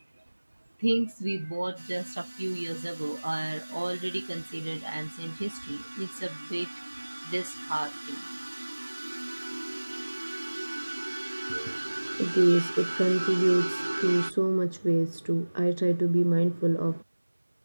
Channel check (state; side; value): inverted; both; correlation -1.00